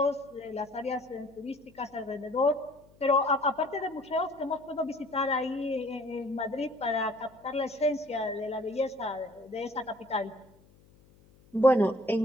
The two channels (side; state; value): left; noise; hum, 28 dB below the sound